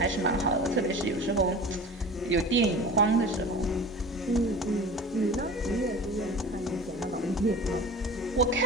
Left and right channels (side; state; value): both; normal; correlation 0.37